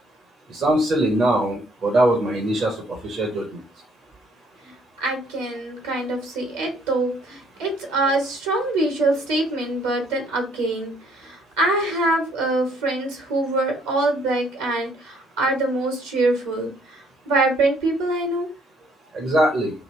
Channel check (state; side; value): normal; both; correlation 0.64